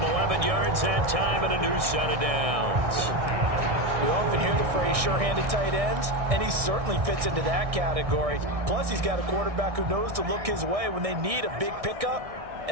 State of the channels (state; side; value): late; left; 1.6 ms